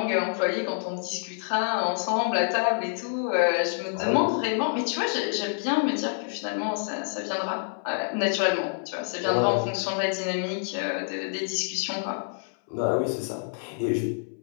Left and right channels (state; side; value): silent; right; 60 dB below the other